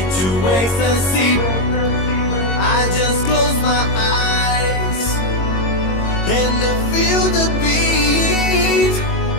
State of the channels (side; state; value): right; late; 22 ms